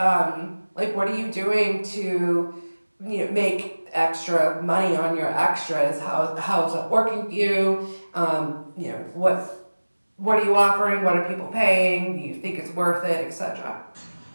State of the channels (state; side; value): inverted; both; correlation -1.00